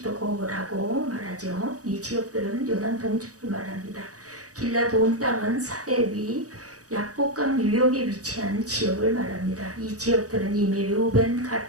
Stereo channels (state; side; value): late; left; 0.66 ms